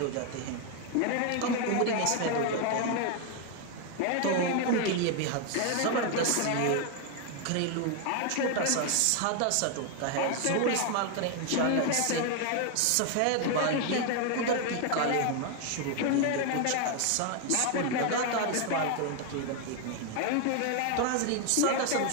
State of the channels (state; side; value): different; both; correlation 0.01